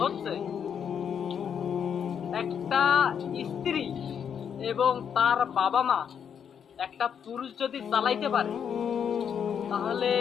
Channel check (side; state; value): right; quieter; 7.8 dB